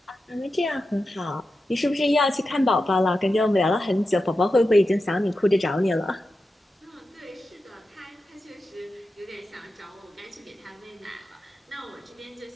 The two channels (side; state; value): both; normal; correlation 0.91